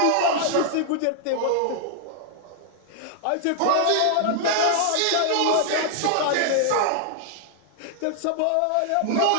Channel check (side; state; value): both; different; correlation -0.01